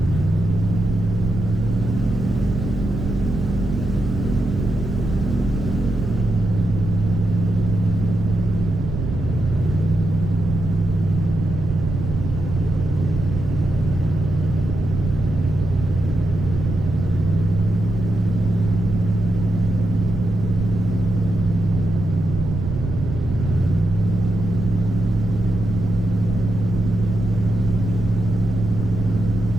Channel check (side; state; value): right; noise; rumble, 4 dB below the sound